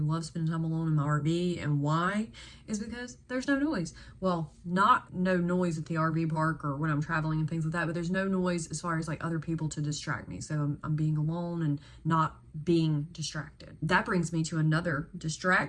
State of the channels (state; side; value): identical; both; correlation 1.00